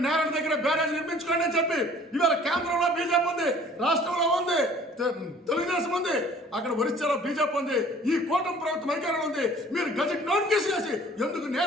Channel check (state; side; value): normal; both; correlation 0.52